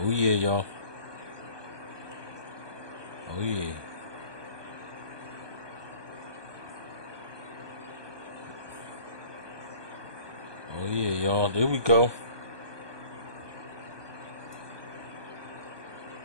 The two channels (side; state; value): left; late; 1.2 ms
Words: yeah, y'all. Oh yeah. Oh yeah, y'all. There we go.